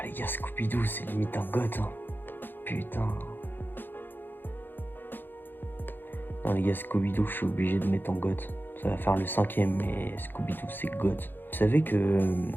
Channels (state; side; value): late; right; 0.096 ms